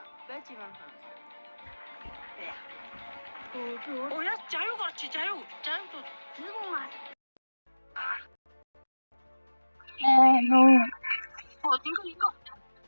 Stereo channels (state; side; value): inverted; both; correlation -1.00